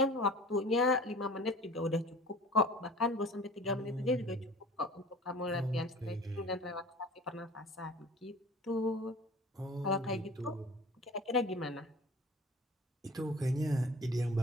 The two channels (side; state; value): both; normal; correlation 0.43